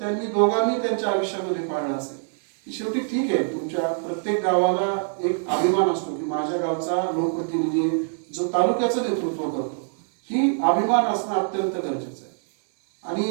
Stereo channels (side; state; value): left; silent; digital silence